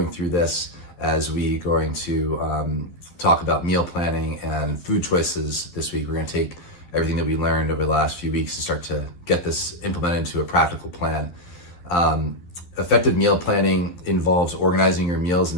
through this, as we're going to talk about meal planning and food choices this week. We're going to take everything that we learned over the last few weeks to start to get this implemented into a practical plan. Effective meal planning involves organizing your meals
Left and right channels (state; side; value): late; right; 12 ms